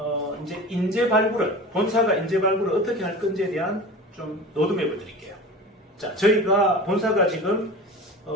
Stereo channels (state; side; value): normal; both; correlation 0.34